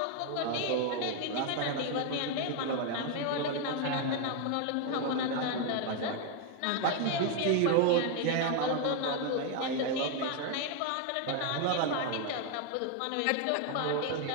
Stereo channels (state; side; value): different; both; correlation 0.01